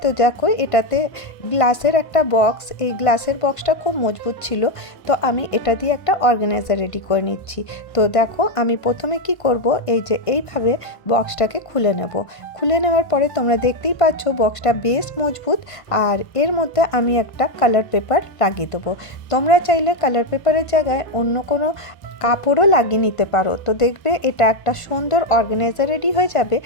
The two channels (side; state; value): right; late; 1.5 ms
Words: তো দেখো এটাতে গ্লাসের একটা বক্স, এই গ্লাসের বক্সটা খুব মজবুত ছিল, তো আমি এটা দিয়ে একটা অর্গানাইজার রেডি করে নিচ্ছি। তো দেখো আমি প্রথমে কি করব, এই যে এইভাবে বক্সটাকে খুলে নেব। খুলে নেওয়ার পরে তোমরা দেখতেই পাচ্ছ বক্সটা বেশ মজবুত, আর এর মধ্যে আমি একটা কালার পেপার লাগিয়ে দেবো। তোমরা চাইলে কালার পেপারের জায়গায় অন্য কোনো কাপড়ও লাগিয়ে নিতে পারো। তো দেখবে এটা একটা সুন্দর অর্গানাইজার রেডি হয়ে যাবে।